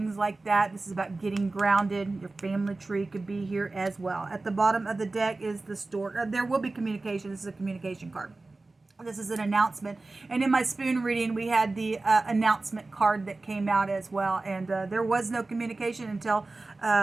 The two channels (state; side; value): quieter; left; 3.3 dB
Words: like that. This is about getting grounded. Your family tree could be here as well. At the bottom of the deck is the store. There will be communication. This is a communication card. This is an announcement. And in my spoon reading, we had the announcement card that came out as well. And there was no communication until